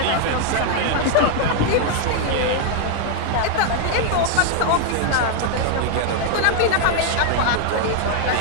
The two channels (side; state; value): both; different; correlation 0.00